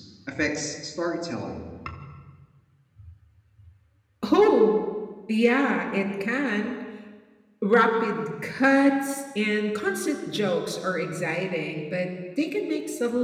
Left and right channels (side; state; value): both; identical; correlation 1.00